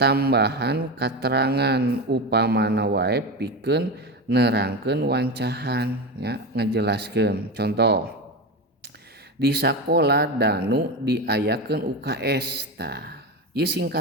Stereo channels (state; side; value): normal; both; correlation 0.20